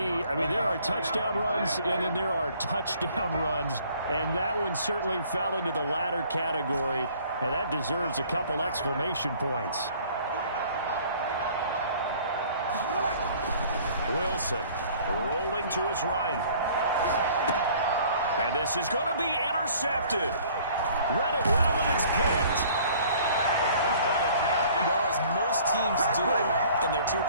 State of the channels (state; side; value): inverted; both; correlation -0.54